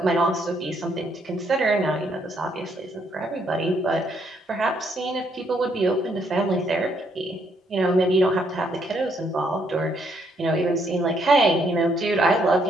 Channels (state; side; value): normal; both; correlation 0.72